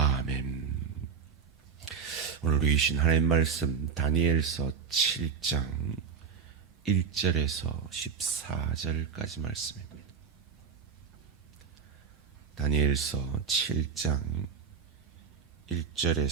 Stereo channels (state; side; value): quieter; left; 6.1 dB